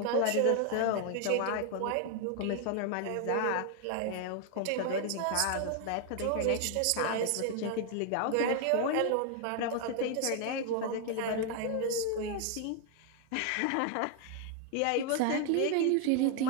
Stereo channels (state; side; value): different; both; correlation 0.00